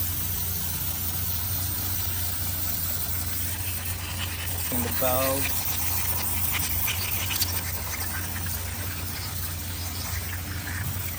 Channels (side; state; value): right; noise; hum, 25 dB below the sound